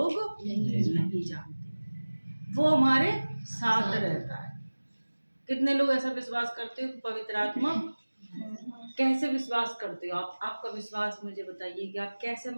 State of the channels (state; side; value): inverted; both; correlation -1.00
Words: नहीं जानते। वो हमारे साथ रहता है। कितने लोग ऐसा विश्वास करते हो कि पवित्र आत्मा? कैसे विश्वास करते हो आप? आपका विश्वास मुझे बताइए कि आप कैसे